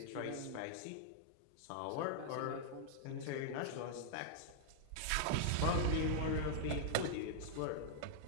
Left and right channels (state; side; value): different; both; correlation -0.01